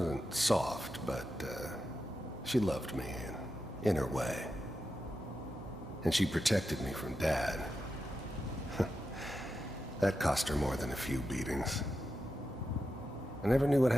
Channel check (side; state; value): both; normal; correlation 0.88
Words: soft, but she loved me in her way. And she protected me from Dad. That cost her more than a few beatings. I never knew what